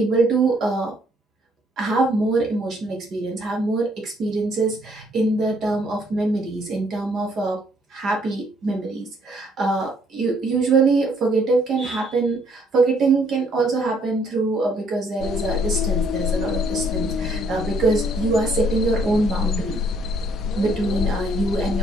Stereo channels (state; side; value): normal; both; correlation 0.66